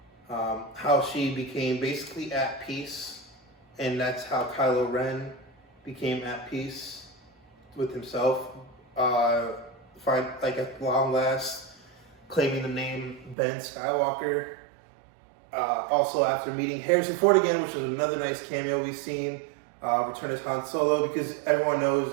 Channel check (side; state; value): left; drops out; at 13.4 s